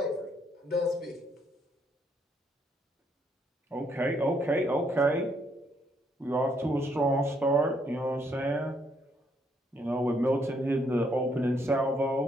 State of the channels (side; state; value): both; normal; correlation 0.72